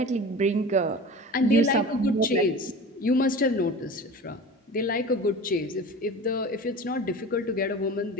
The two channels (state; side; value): normal; both; correlation 0.35